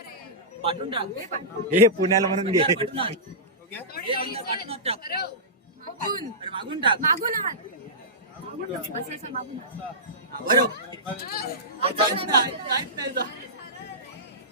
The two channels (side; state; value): both; normal; correlation -0.17